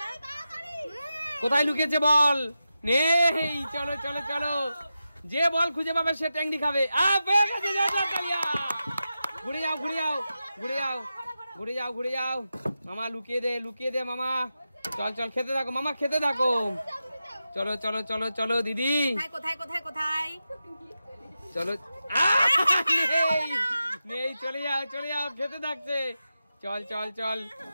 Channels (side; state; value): both; inverted; correlation -0.91